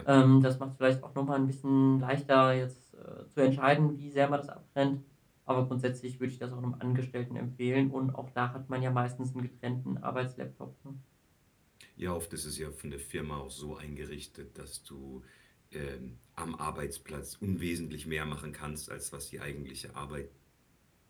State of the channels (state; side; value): identical; both; correlation 1.00